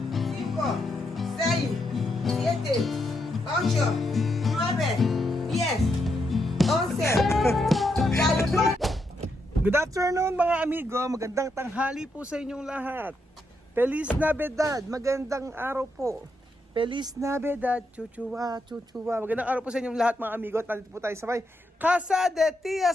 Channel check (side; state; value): both; normal; correlation 0.81